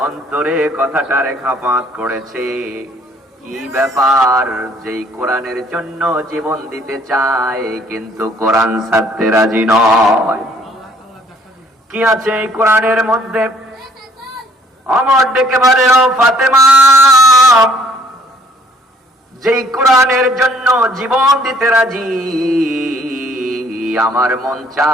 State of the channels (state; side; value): normal; both; correlation 0.61